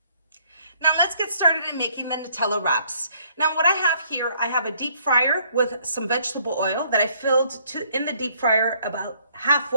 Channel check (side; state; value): both; inverted; correlation -0.65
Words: Now let's get started in making the Nutella wraps. Now what I have here, I have a deep fryer with some vegetable oil that I filled in the deep fryer about